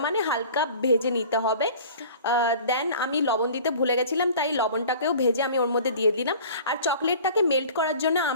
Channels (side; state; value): both; inverted; correlation -0.44